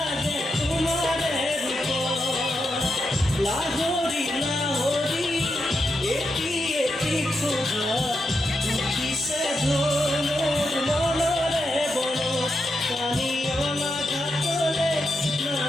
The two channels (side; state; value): both; normal; correlation 0.85